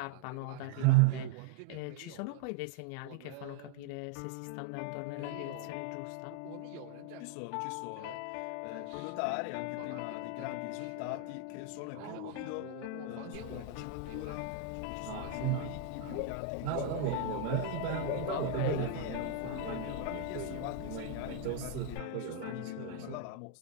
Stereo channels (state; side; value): different; both; correlation 0.00